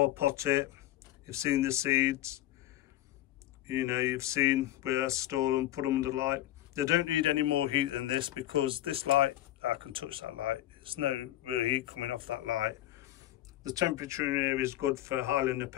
I pot it, you've seen the seeds, you know, you've seen where I store them, put them under light. They don't need any more heat than this, because this light, I can touch that light, there's no real heat coming off that light. The temperature in here is good for Highland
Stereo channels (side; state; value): right; quieter; 14.3 dB